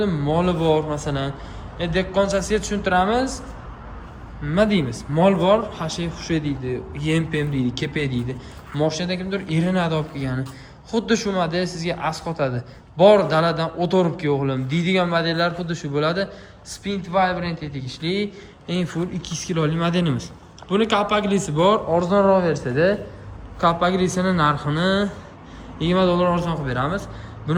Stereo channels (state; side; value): identical; both; correlation 1.00